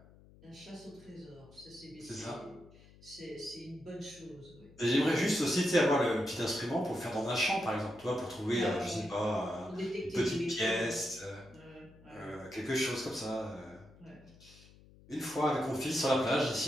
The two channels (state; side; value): noise; left; hum, 23 dB below the sound